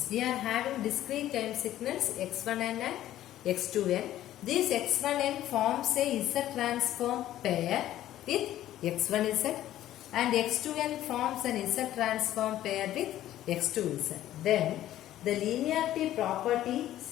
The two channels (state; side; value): quieter; right; 13.2 dB